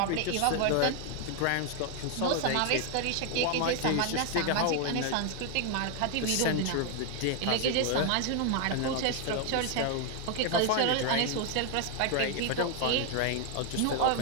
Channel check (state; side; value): different; both; correlation 0.00